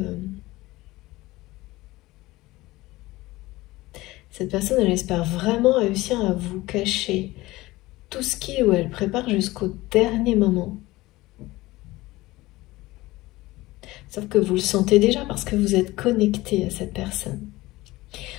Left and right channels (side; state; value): right; quieter; 19.1 dB